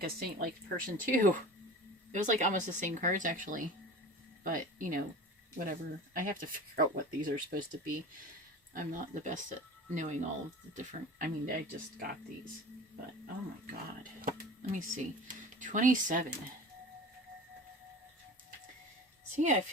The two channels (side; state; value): both; normal; correlation 0.36